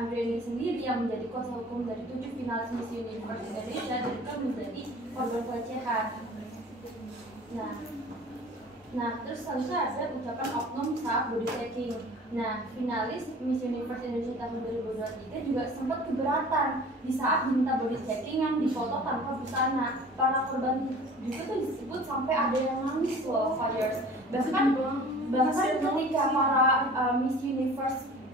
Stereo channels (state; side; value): normal; both; correlation 0.44